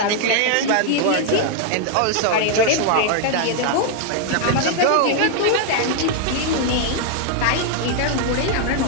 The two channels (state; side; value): different; both; correlation 0.00